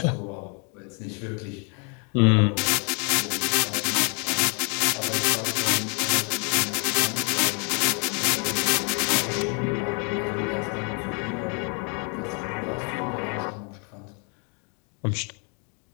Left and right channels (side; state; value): right; quieter; 37.8 dB